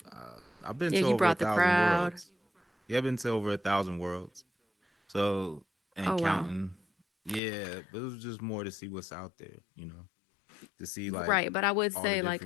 I've been Yeah, to you over a brought the thousand crowd. worlds. Yeah, I've been to over 1,000 worlds. So and Oh, wow. counting. Yeah, but it was just more to see what's out there. You know, to see like Right. But I would all the say, like,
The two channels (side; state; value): right; drops out; at 7.4 s